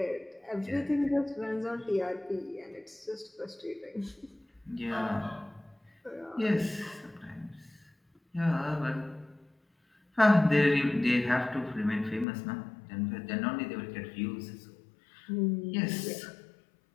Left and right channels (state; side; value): drops out; right; at 12.2 s